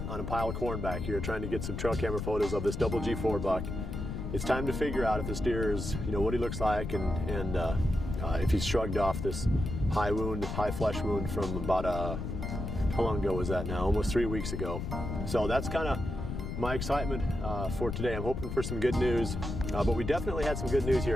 on a pile of corn back here trying to get some trail camera photos of this double G4 buck. It's time to figure out if this deer is, what he looks like and if he's shrugged off this high flesh wound from about how long ago was that now? Almost 3 weeks ago. So that's kind of my excitement for today. I'm hoping for some good news, but we definitely had some good news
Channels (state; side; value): noise; left; rumble, 5 dB below the sound